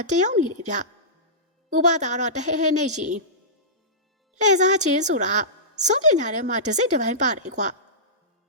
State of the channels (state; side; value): normal; both; correlation -0.18